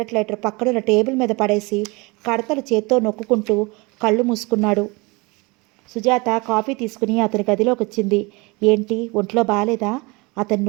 లైటర్ పక్కనున్న టేబుల్ మీద పడేసి కడతలు చేత్తో నొక్కుంటూ కళ్ళు మూసుకున్నాడు. సుజాత కాఫీ తీసుకుని అతని గదిలోకి వచ్చింది. ఏంటి, ఒంట్లో బాలేదా? అతని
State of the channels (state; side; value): quieter; left; 26.2 dB